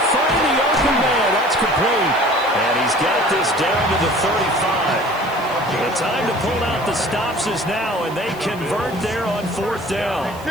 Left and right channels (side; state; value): right; noise; hiss, 22 dB below the sound